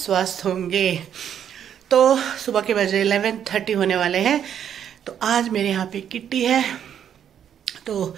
होंगे। तो सुबह के बजे 11:30 होने वाले हैं। तो आज मेरे यहाँ पे किट्टी है। तो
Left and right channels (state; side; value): quieter; left; 9.1 dB